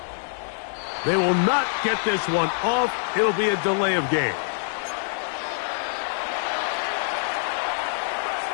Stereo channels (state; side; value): silent; right; digital silence